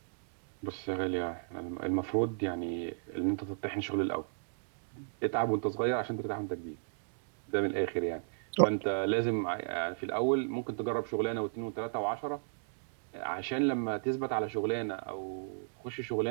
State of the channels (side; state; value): left; silent; digital silence